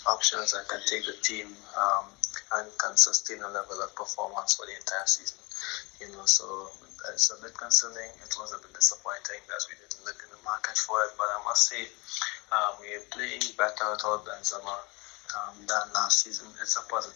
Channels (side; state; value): right; quieter; 26.4 dB